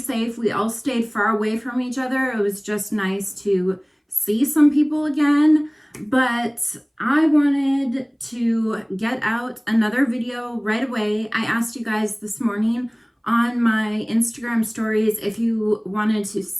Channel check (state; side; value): identical; both; correlation 1.00